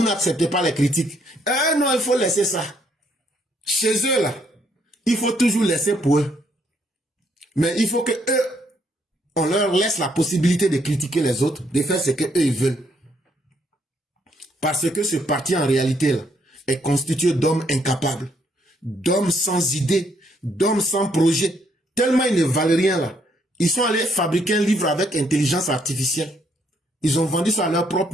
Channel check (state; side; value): normal; both; correlation 0.71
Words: n'acceptez pas les critiques? Non, il faut laisser ça. Chez eux, là, il faut toujours laisser pour eux. Mais il faut que eux, on leur laisse la possibilité de critiquer les autres, de faire ce qu'eux ils veulent. Parce que ce parti, en réalité, là, est constitué d'hommes incapables, d'hommes sans idées, d'hommes sans projet. Tellement ils ne valent rien, là. Ils sont allés fabriquer un livre avec intelligence artificielle. Ils ont vendu ça à leurs propres